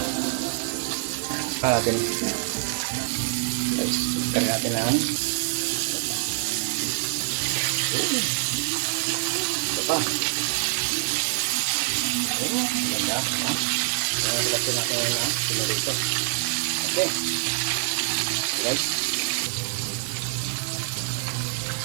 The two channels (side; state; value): left; silent; digital silence